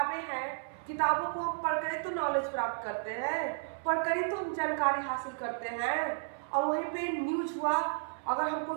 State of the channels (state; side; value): silent; left; 56 dB below the other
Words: हैं, किताबों को हम पढ़कर तो नॉलेज प्राप्त करते हैं, पढ़कर ही तो हम जानकारी हासिल करते हैं। और वहीं पे न्यूज हुआ, अगर हमको